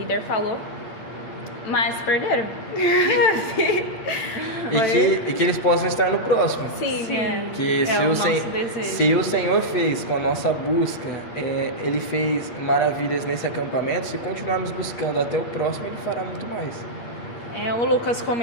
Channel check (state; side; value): late; right; 8.5 ms